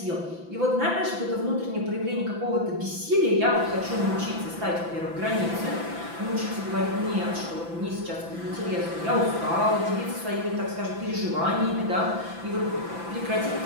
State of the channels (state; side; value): late; left; 5.9 ms